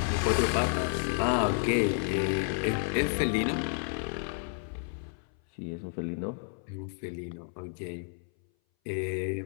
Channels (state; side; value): silent; right; 57 dB below the other